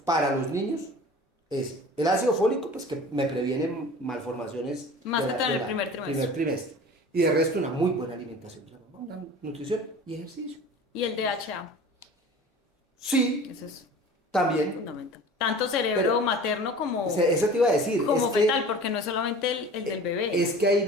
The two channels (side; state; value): both; normal; correlation 0.41